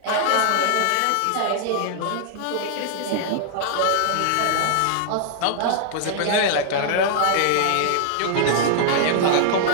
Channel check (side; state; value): both; different; correlation -0.01